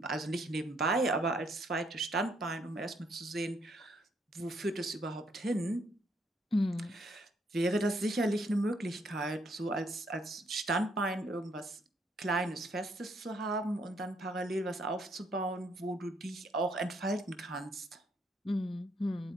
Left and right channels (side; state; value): both; normal; correlation 0.71